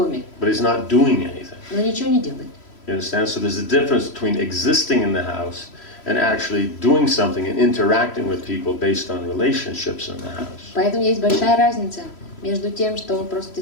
but he's not doing anything. но ничего не делает. You understand? So there's a difference between existing in the house and actually doing something and interacting with people based on relationships in the house. Поэтому есть большая разница между тем, что он просто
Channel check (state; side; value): late; right; 3.0 ms